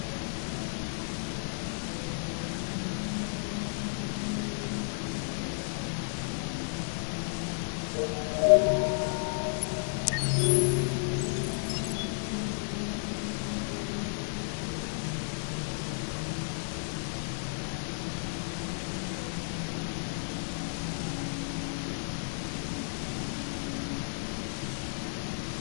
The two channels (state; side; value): silent; right; 56 dB below the other